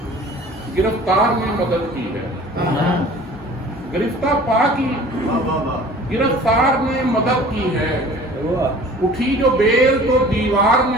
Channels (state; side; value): normal; both; correlation 0.46